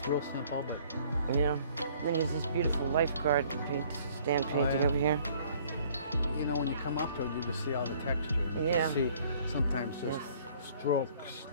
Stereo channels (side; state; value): both; inverted; correlation -0.58